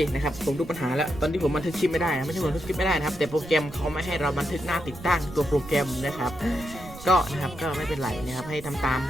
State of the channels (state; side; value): noise; right; rumble, 15 dB below the sound